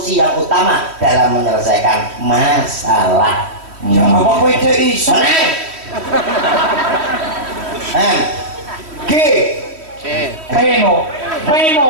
yang utama dalam menyelesaikan masalah. Ya apa kowe cek iso? G. Peno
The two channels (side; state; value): left; late; 3.1 ms